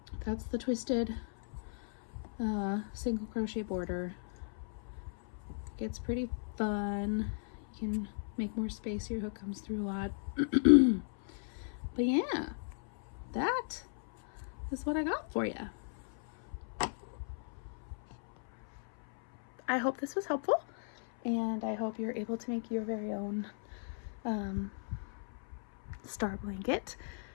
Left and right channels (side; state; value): right; silent; 54 dB below the other